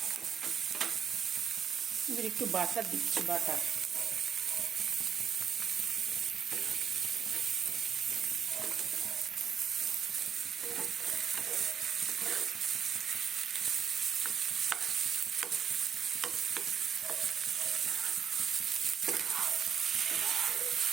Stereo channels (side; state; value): left; quieter; 7.7 dB